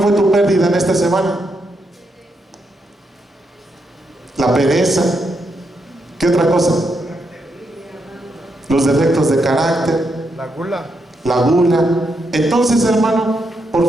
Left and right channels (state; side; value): normal; both; correlation 0.81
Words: tu pérdida en esta semana? La pereza. ¿Qué otra cosa? Los defectos de carácter. La gula. La gula. Entonces, hermano,